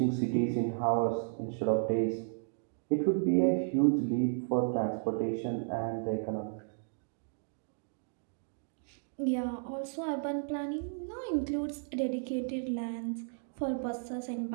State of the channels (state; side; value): silent; left; digital silence